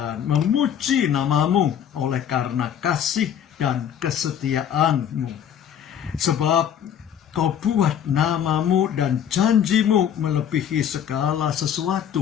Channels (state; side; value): quieter; right; 9.1 dB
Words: memuji nama-Mu oleh karena kasih dan kesetiaan-Mu. Sebab Kau buat nama-Mu dan janji-Mu melebihi segala